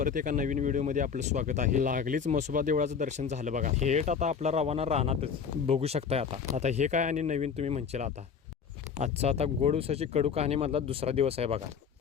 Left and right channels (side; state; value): right; quieter; 6.5 dB